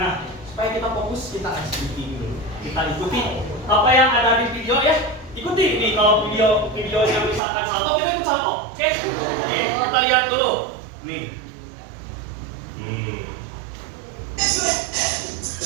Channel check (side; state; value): left; drops out; at 7.4 s